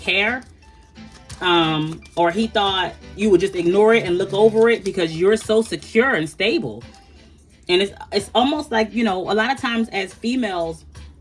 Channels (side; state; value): both; identical; correlation 1.00